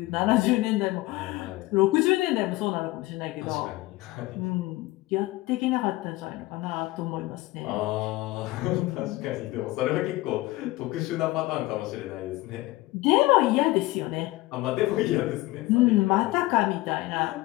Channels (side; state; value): right; quieter; 19.3 dB